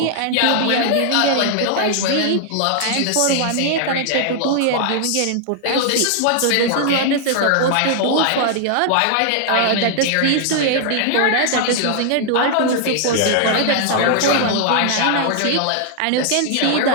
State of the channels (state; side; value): different; both; correlation 0.00